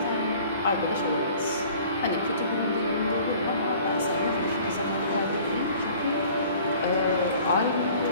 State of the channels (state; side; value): inverted; both; correlation -0.50